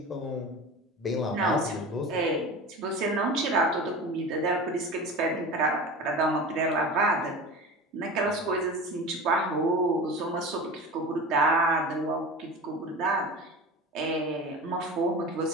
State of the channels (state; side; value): normal; both; correlation 0.32